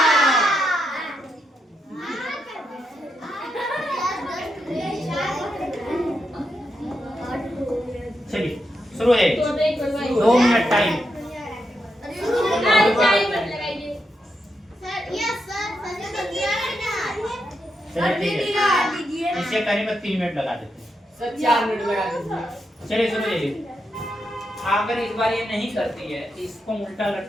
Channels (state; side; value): normal; both; correlation 0.84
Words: चलिए शुरू है। 2 मिनट टाइम। इसे करीब 3 मिनट लगा देते हैं। सर 4 मिनट लगा दीजिए। चलिए सुनो ये, अगर इस बार ये नहीं करती है इसको उल्टा